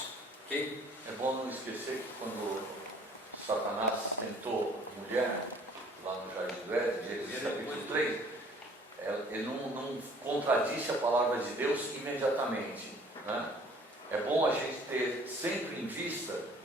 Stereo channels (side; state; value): both; normal; correlation 0.55